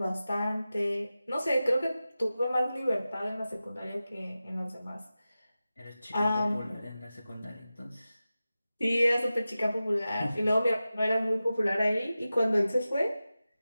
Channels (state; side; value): inverted; both; correlation -0.94